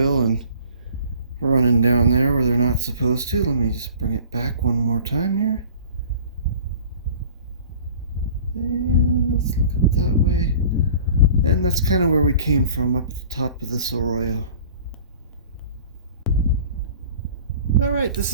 and running down there where they're not supposed to. Let me just bring it back one more time here. And let's look up that way. And that's kind of where we came from, up at the top of this Arroyo. Alright, this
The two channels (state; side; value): inverted; both; correlation -0.47